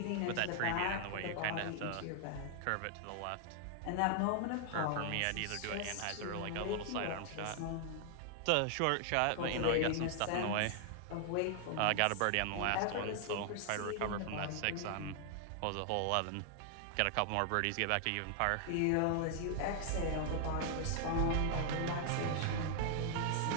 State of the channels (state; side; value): different; both; correlation 0.00